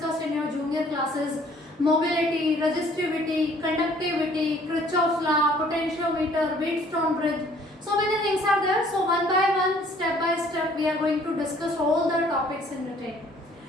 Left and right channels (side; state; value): both; normal; correlation 0.58